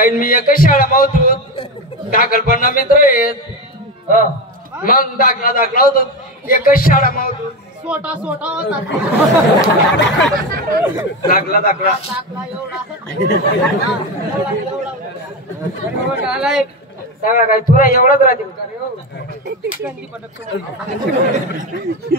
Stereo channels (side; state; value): both; normal; correlation 0.17